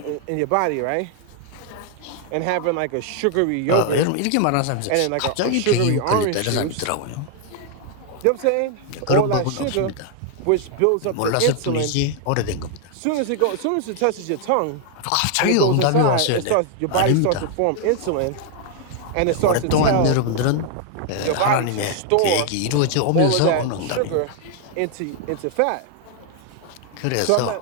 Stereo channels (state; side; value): different; both; correlation 0.00